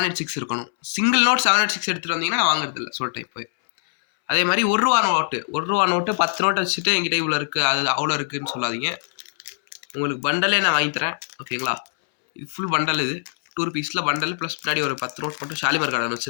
இருக்கணும். சிங்கிள் நோட் 786 எடுத்துகிட்டு வந்தீங்கன்னா நான் வாங்குறது இல்லை சொல்லிட்டேன் இப்போ. அதே மாதிரி 1 ரூபா நோட்டு 1 ரூபா நோட்டு 10 நோட்டு வச்சுட்டு என்கிட்ட இவ்வளோ இருக்குது, அது அவ்வளோ இருக்குதுன்னு சொல்லாதீங்க. உங்களுக்கு பண்டலே நான் வாங்கி தரேன். ஓகேங்களா? இது ஃபுல் பண்டல். இது 2 ரூபீஸில் பண்டல் ப்ளஸ் முன்னாடி ஒரு 10 நோட் மட்டும் ஷாலிமார் கார்டன்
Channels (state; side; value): silent; right; 62 dB below the other